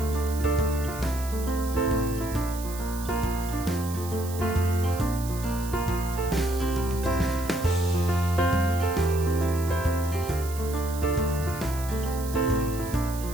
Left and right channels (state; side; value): noise; right; hiss, 13 dB below the sound